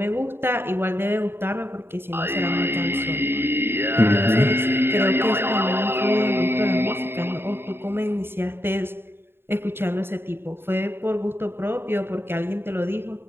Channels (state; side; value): late; left; 0.11 ms